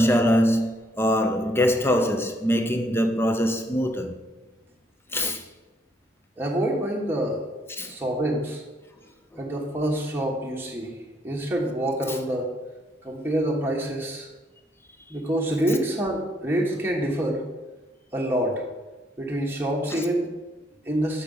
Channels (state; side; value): normal; both; correlation 0.70